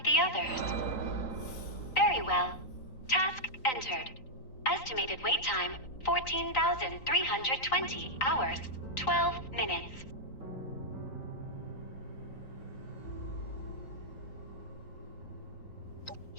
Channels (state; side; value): late; right; 3.9 ms